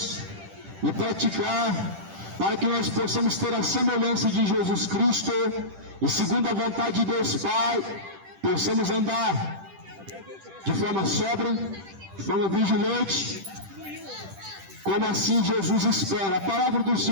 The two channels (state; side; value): late; left; 10 ms